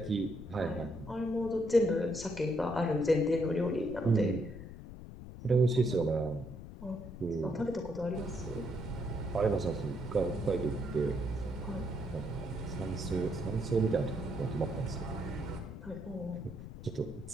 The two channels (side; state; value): left; noise; rumble, 12 dB below the sound